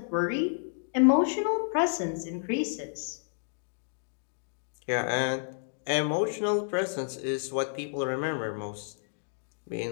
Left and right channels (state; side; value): silent; right; digital silence